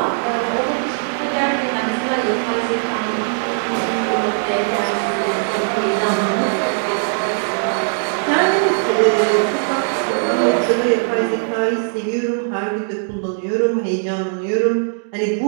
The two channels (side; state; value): left; silent; digital silence